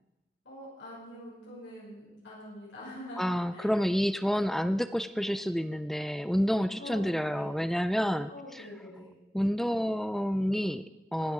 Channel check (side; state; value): both; normal; correlation 0.97